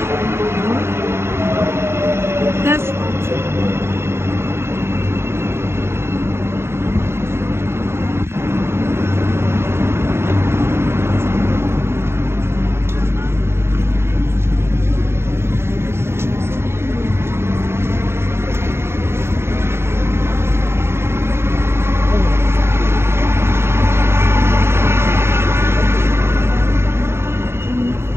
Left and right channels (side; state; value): left; late; 0.12 ms